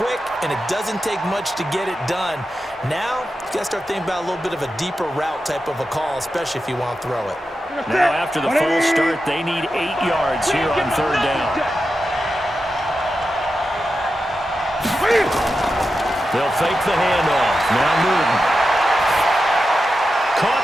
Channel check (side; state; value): both; normal; correlation 0.90